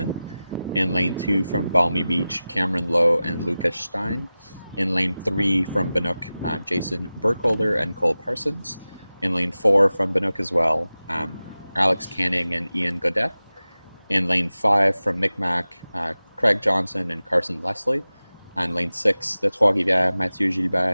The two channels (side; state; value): both; inverted; correlation -0.96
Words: In lane 2 from Balmy Beach, Cameron Lowe and Lucas Stein. In lane 3 from Binook, Jason Burkholder and Cole Parsons. In lane 4 from Binook as well, Alex Canning and Ian Godet. In lane 5 from Micmac, Craig Johnson and Carson Leslie. And lane 6, the Trois-Rivières, Mathieu